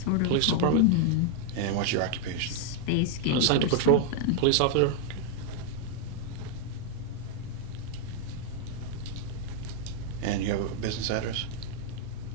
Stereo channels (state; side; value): different; both; correlation 0.00